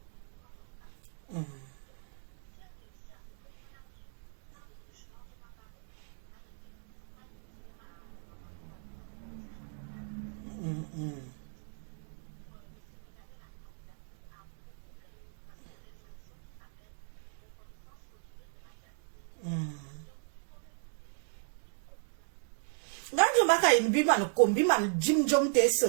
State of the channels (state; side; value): silent; left; 54 dB below the other